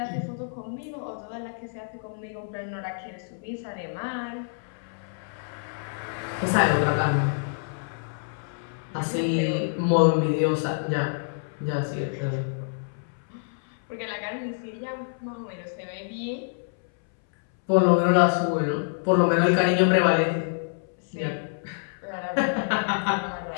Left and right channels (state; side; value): silent; right; 60 dB below the other